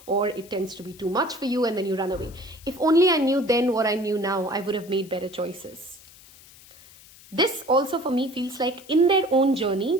or it tends to be too much for you, and then you run away. If only I knew then what I knew now, I would have made better choices. This also for me feels like in their own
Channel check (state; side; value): noise; left; hiss, 22 dB below the sound